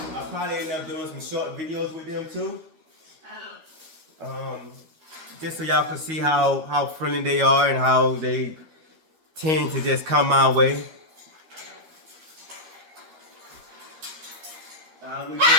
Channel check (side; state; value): left; late; 13 ms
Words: probably end up doing some short videos with them too. Just so y'all can see how friendly they are and how they tend to just come my way. we're